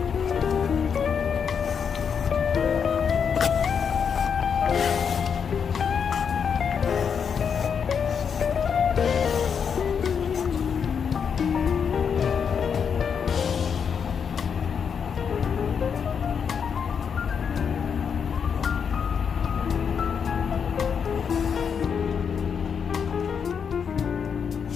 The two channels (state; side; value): quieter; right; 6.9 dB